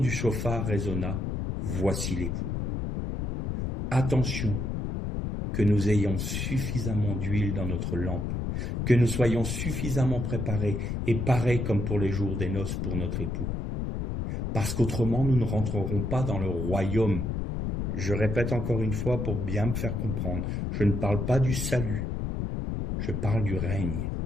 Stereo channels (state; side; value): noise; left; rumble, 2 dB below the sound